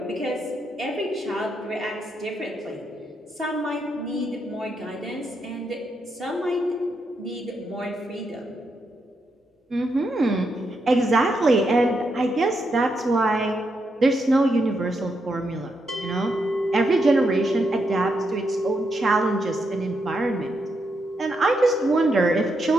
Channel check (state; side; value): normal; both; correlation 0.81